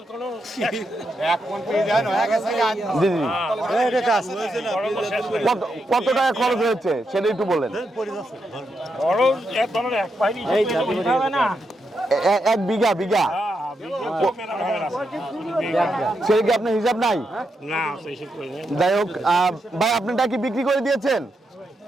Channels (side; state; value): both; normal; correlation 0.83